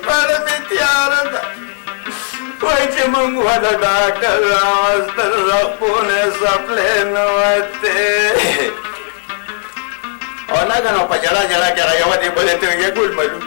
پړه مې تیاره ده وایي چې موږ ونه ډاکټر راوستل رپونه سپلې نه وتې او ناګنه په جړا کې هغه یوه دې بلې ته ویې ګل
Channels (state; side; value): silent; right; 56 dB below the other